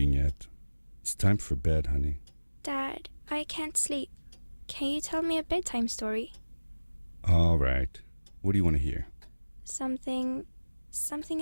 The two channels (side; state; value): both; inverted; correlation -1.00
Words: yet? It's time for bed, honey. Dad, I can't sleep. Can you tell me a bedtime story? All right. What do you want to hear? Something